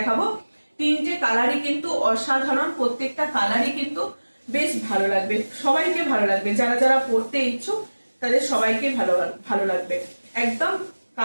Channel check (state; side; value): inverted; both; correlation -1.00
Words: তিনটে কালারই কিন্তু অসাধারণ, প্রত্যেকটা কালারই কিন্তু বেশ ভালো লাগবে, সবাইকে ভালো লাগবে, যারা যারা পড়তে ইচ্ছুক তাদের সবাইকে ভালো লাগবে। একদম